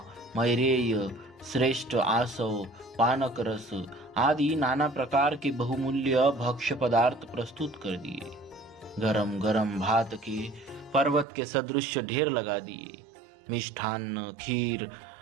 मैरेय, श्रेष्ठ आसव, पानक रस आदि नाना प्रकार के बहुमूल्य भक्ष्य पदार्थ प्रस्तुत कर दिए। गरम गरम भात के पर्वत के सदृश ढेर लगा दिए। मिष्ठान्न, खीर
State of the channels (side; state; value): left; drops out; at 11.2 s